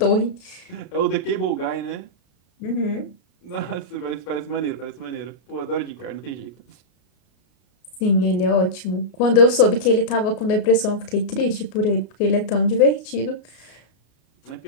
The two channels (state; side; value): late; right; 33 ms